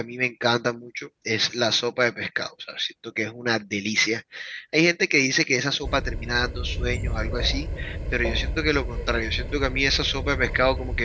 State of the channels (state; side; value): identical; both; correlation 1.00